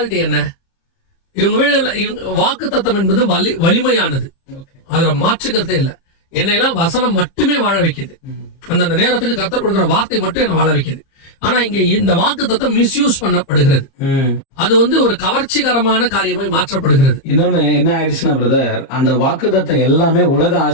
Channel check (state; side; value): late; right; 30 ms